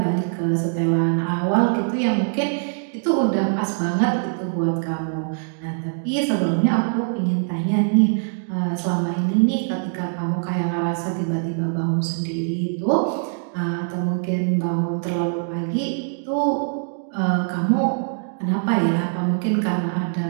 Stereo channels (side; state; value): left; silent; digital silence